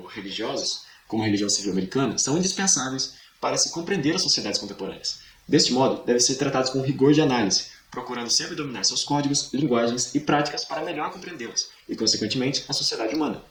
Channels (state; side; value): identical; both; correlation 1.00